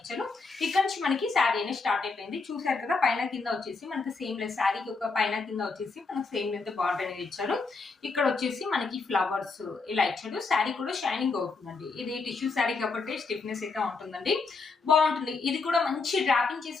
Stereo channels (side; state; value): right; quieter; 4.3 dB